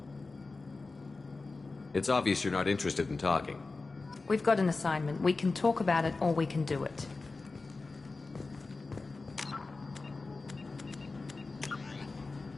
It's obvious you're not interested in talking. We've got an assignment. We can talk about it, or we can do it.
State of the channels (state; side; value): quieter; right; 3.7 dB